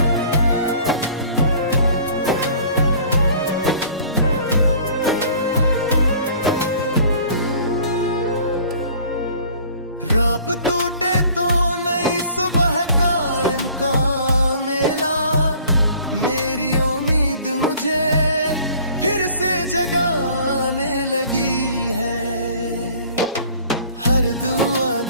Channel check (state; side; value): inverted; both; correlation -0.51